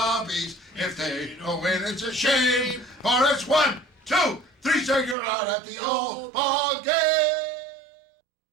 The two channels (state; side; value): drops out; left; at 5.2 s